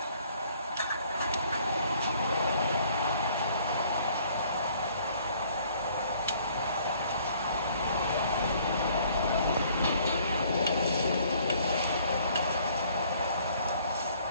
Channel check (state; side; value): inverted; both; correlation -0.60